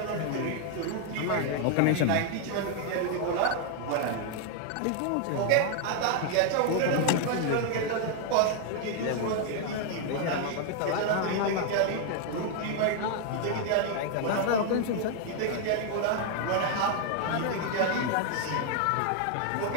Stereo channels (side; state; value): both; different; correlation 0.00